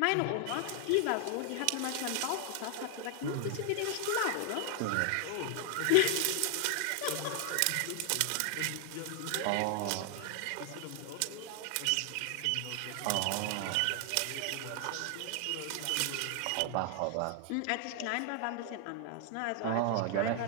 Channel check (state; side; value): different; both; correlation 0.00